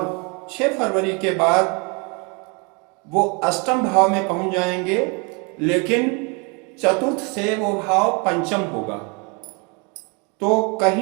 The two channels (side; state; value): left; quieter; 32.4 dB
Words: 6 फरवरी के बाद वो अष्टम भाव में पहुंच जाएंगे। लेकिन चतुर्थ से वो भाव पंचम होगा। तो